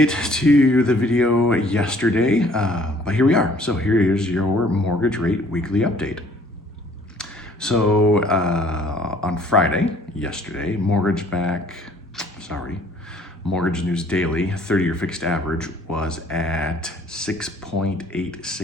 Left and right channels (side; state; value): both; normal; correlation 0.57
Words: to the video yesterday, but here we are. So here is your mortgage rate weekly update. So on Friday, yesterday, Mortgage News Daily 30-year fixed average was at 6.86%